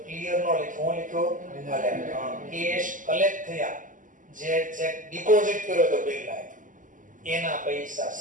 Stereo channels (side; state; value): left; late; 0.38 ms